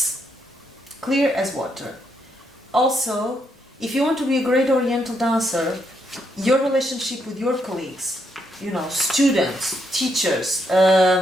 clear as water. Also, if you want to be a great Oriental dancer, your relationship with your colleagues, you know, students, teachers,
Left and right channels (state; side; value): normal; both; correlation 0.77